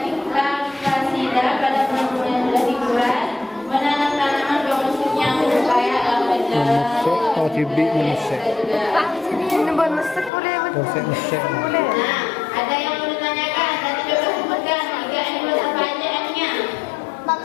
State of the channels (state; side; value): drops out; right; at 10.3 s